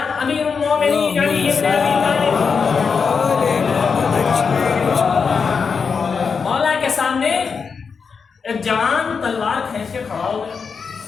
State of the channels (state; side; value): quieter; right; 5.6 dB